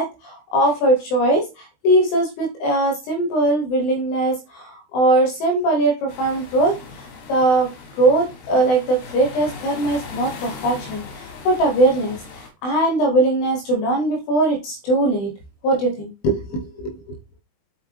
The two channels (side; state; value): right; late; 20 ms